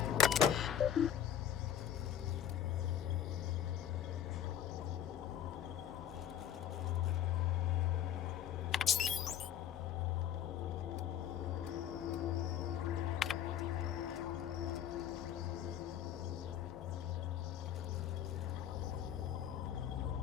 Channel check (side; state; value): right; quieter; 10.0 dB